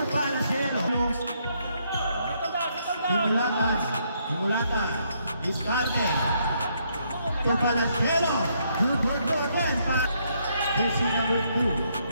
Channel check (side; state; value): both; inverted; correlation -0.73